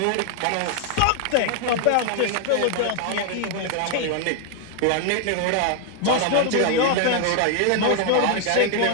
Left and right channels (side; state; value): both; different; correlation 0.00